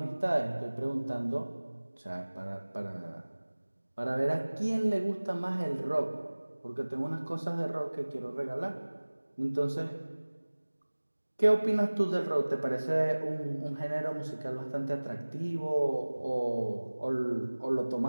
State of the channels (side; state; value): both; inverted; correlation -1.00